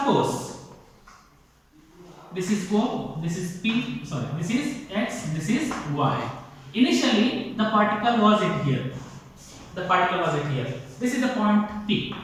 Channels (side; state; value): both; identical; correlation 1.00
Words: this is O, this is P, this is X, this is Y. Initially the particle was at here. This is the point P.